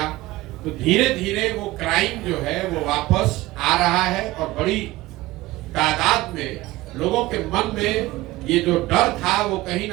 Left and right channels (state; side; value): quieter; left; 18.3 dB